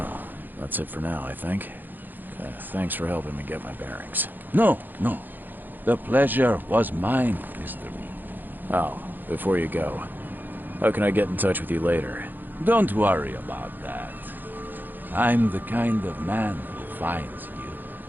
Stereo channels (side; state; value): left; late; 0.088 ms